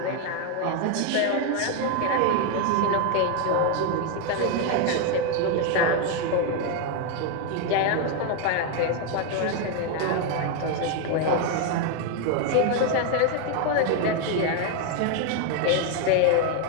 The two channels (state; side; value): different; both; correlation 0.01